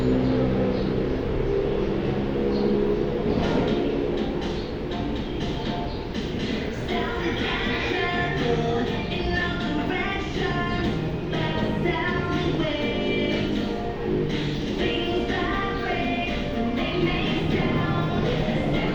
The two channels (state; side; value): identical; both; correlation 1.00